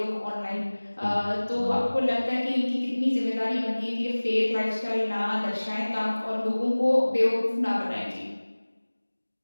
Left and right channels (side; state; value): both; inverted; correlation -1.00